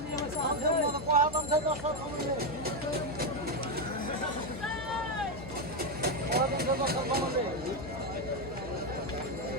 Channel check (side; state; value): left; noise; hum, 13 dB below the sound